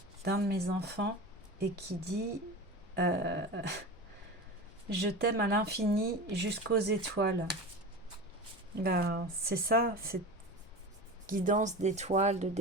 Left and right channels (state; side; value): normal; both; correlation 0.30